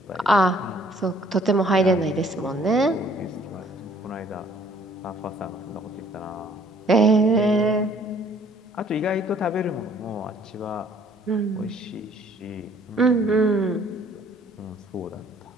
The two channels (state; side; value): normal; both; correlation 0.59